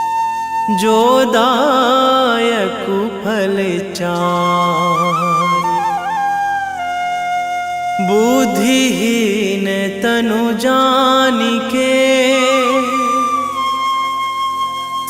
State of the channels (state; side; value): identical; both; correlation 1.00